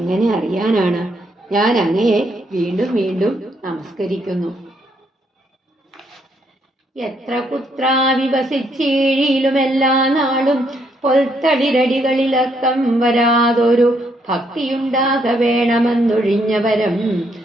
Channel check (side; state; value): both; normal; correlation 0.73